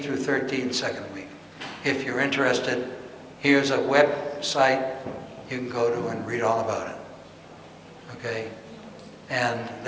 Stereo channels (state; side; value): identical; both; correlation 1.00